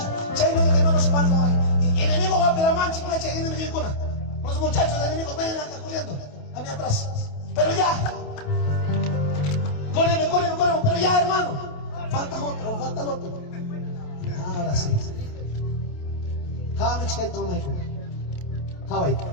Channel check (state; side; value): late; right; 28 ms